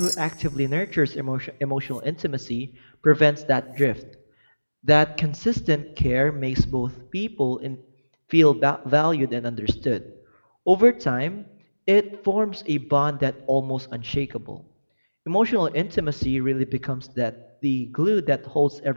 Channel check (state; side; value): inverted; both; correlation -1.00